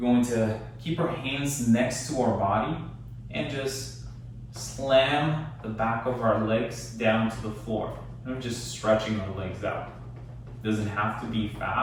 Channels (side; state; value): both; identical; correlation 1.00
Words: going to keep our hands next to our body and just slam the back of our legs down to the floor. And we're just stretching our legs out. It doesn't have to be